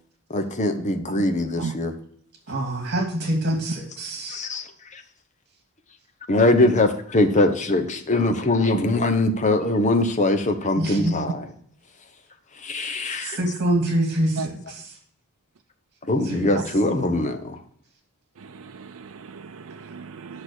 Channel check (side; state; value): both; normal; correlation 0.40